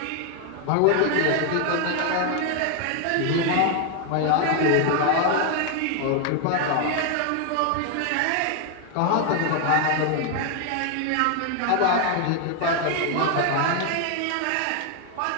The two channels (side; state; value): both; different; correlation 0.01